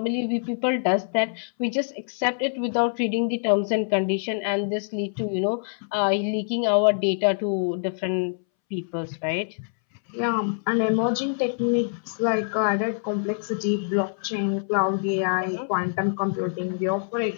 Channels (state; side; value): silent; right; 62 dB below the other